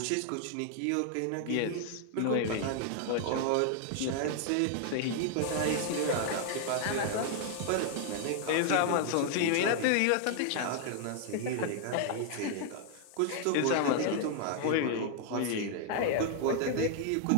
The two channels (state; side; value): different; both; correlation 0.00